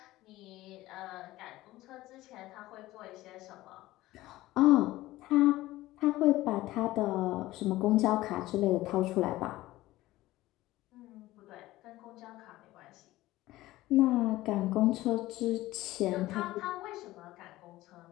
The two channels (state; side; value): quieter; right; 17.0 dB